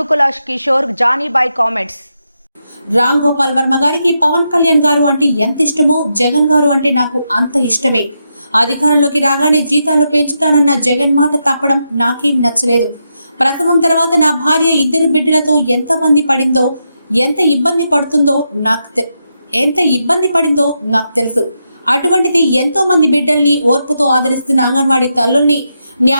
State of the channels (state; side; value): inverted; both; correlation -0.84